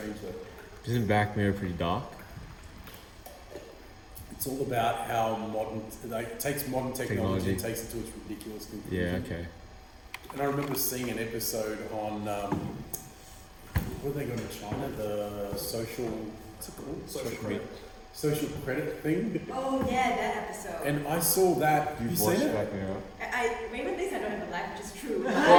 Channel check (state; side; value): identical; both; correlation 1.00